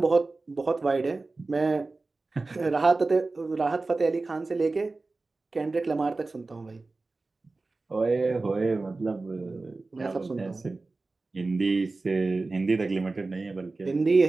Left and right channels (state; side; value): quieter; left; 3.5 dB